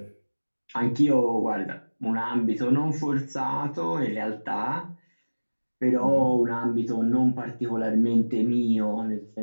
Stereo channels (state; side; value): inverted; both; correlation -1.00